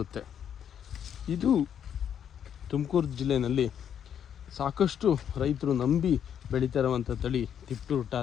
ಇದು ತುಮಕೂರು ಜಿಲ್ಲೆಯಲ್ಲಿ ಸಾಕಷ್ಟು ರೈತರು ನಂಬಿ ಬೆಳೀತಾ ಇರುವಂಥ ತಳಿ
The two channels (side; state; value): right; quieter; 8.9 dB